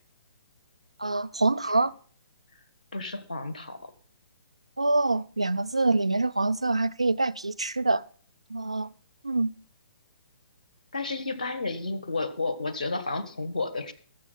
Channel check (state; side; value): inverted; both; correlation -0.89